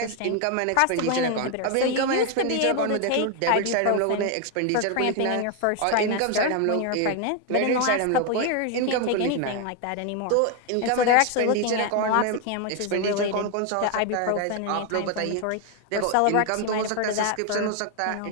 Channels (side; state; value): both; different; correlation 0.01